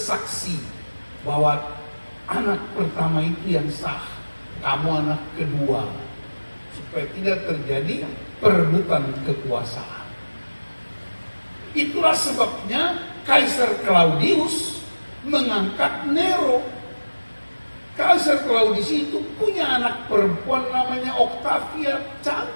bahwa anak pertama itu yang sah, kamu anak kedua, supaya tidak terjadi perebutan kekuasaan. Itulah sebabnya Kaisar Claudius mengangkat Nero. Kaisar Claudius itu punya anak perempuan namanya Octavia,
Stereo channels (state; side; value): inverted; both; correlation -1.00